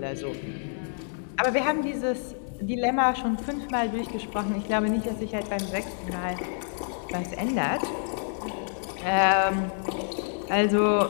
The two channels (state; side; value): silent; right; digital silence